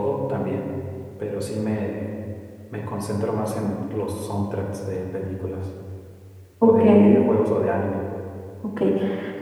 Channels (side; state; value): both; identical; correlation 1.00